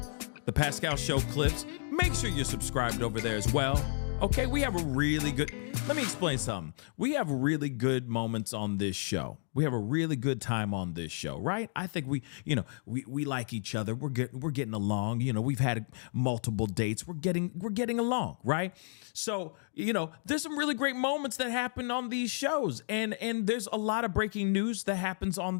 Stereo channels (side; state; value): right; silent; digital silence